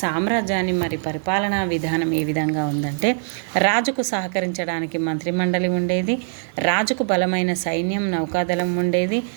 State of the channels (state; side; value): silent; left; digital silence